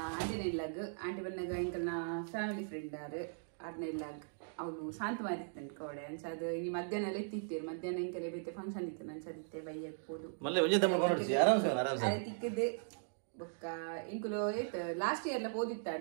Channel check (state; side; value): silent; left; digital silence